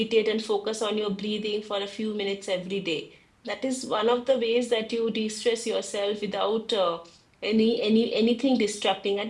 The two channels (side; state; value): both; identical; correlation 1.00